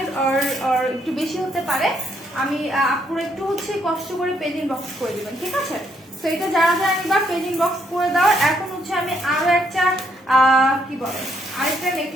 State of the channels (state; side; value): normal; both; correlation 0.72